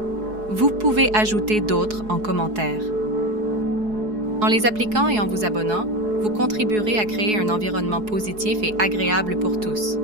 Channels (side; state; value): left; late; 4.7 ms